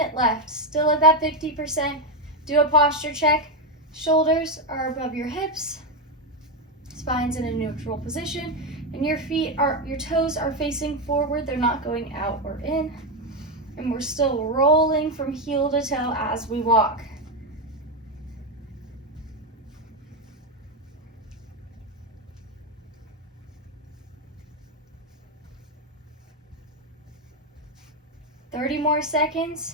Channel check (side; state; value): both; normal; correlation 0.08